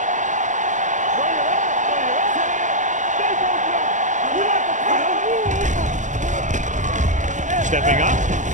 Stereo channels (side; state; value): left; late; 0.36 ms